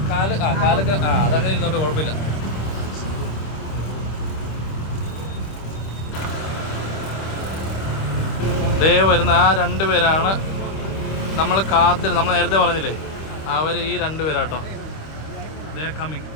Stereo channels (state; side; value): late; right; 26 ms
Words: കാലൊക്കെ അതങ്ങനെ ഇരുന്നോട്ട് കുഴപ്പമില്ല. ദേ വരുന്ന ആ 2 പേരാണ് നമ്മൾ നമ്മൾ നേരത്തെ പറഞ്ഞില്ലേ, അവർ ഈ 2 പേരാട്ടോ. ദേ കമ്മിങ്.